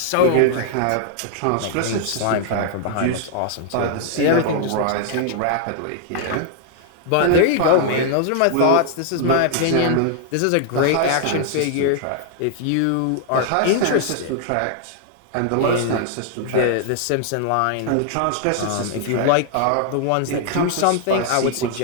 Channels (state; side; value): different; both; correlation 0.00